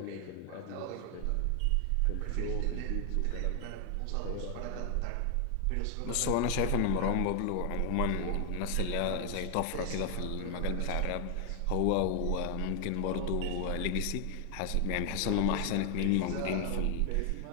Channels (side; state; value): both; different; correlation 0.00